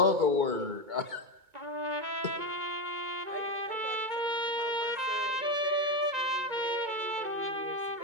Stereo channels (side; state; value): left; late; 2.2 ms